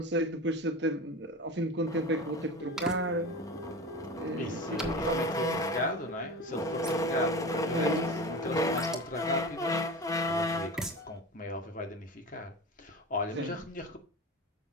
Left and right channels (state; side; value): normal; both; correlation 0.29